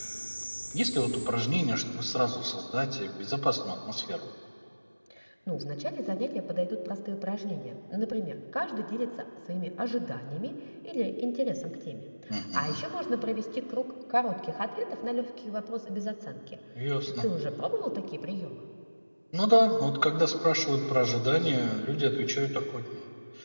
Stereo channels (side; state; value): both; inverted; correlation -1.00